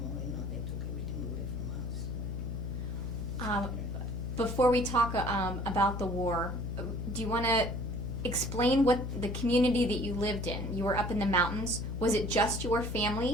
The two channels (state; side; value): noise; left; hum, 5 dB below the sound